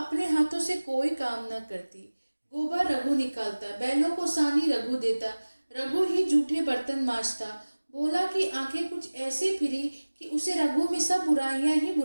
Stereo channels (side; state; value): both; inverted; correlation -1.00